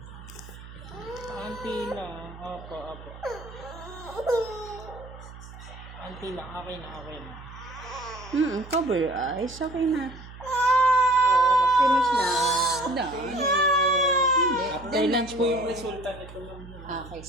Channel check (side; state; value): right; noise; hum, 16 dB below the sound